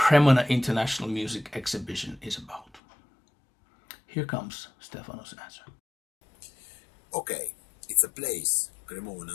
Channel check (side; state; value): right; drops out; at 2.8 s